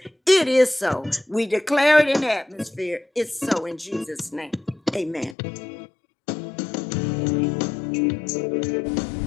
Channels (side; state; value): right; drops out; at 5.4 s